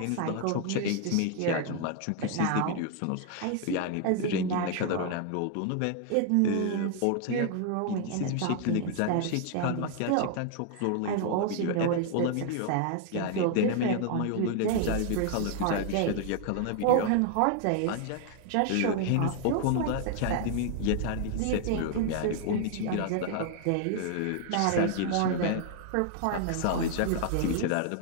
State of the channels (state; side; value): different; both; correlation 0.00